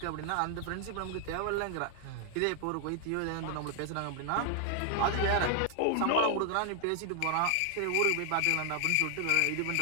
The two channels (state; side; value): different; both; correlation 0.00